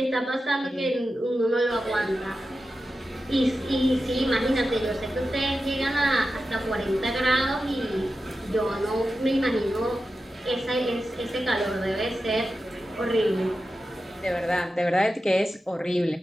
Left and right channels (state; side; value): normal; both; correlation 0.92